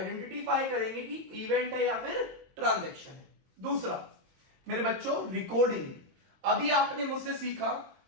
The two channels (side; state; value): left; late; 22 ms